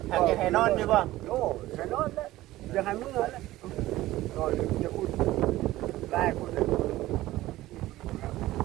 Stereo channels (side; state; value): left; quieter; 16.4 dB